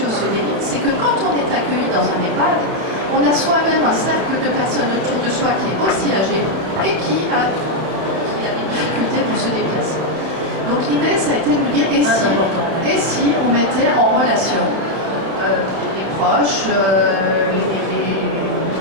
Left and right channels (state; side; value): late; left; 31 ms